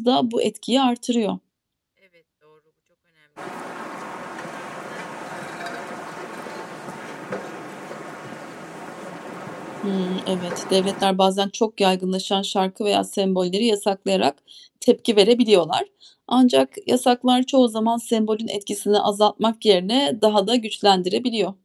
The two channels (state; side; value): identical; both; correlation 1.00